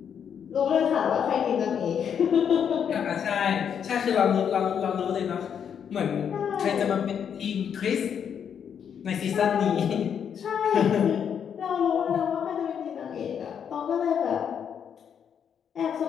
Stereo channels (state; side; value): quieter; right; 8.0 dB